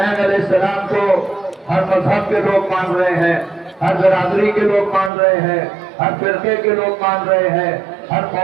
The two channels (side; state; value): left; drops out; at 5.1 s